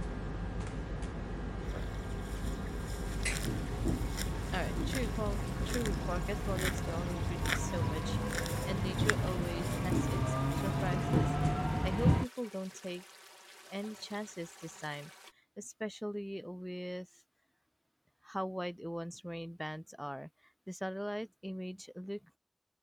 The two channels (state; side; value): identical; both; correlation 1.00